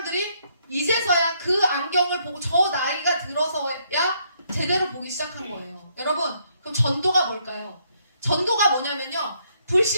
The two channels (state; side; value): inverted; both; correlation -0.72